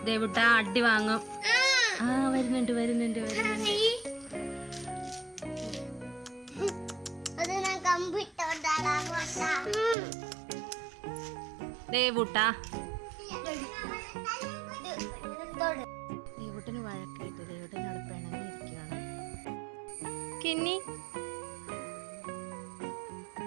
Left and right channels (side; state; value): left; drops out; at 10.0 s